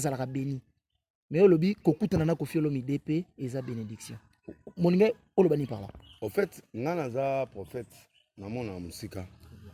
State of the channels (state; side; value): identical; both; correlation 1.00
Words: béni. Mais olobi kokutana na Koffi Olomide pe eza bénédiction. Moninga olobani par là. En fait, ngana za prophète na mona musika.